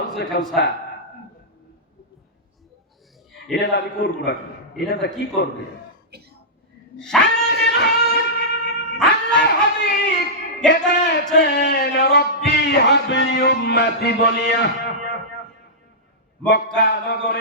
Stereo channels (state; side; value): normal; both; correlation -0.13